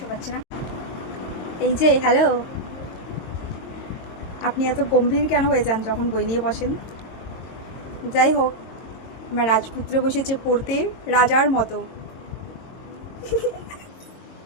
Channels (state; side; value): late; right; 22 ms